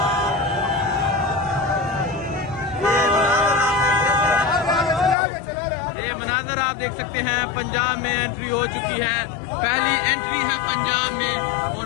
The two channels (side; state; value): right; drops out; at 5.2 s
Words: ये मनाज़र आप देख सकते हैं, पंजाब में एंट्री हो चुकी है। पहली एंट्री है पंजाब में।